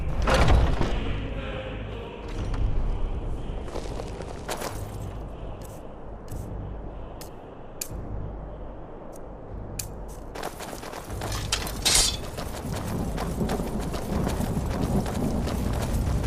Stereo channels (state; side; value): identical; both; correlation 1.00